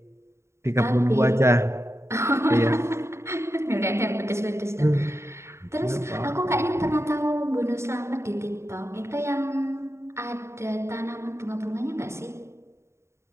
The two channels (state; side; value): late; left; 0.13 ms